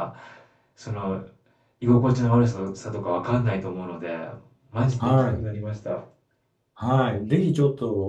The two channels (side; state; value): both; identical; correlation 1.00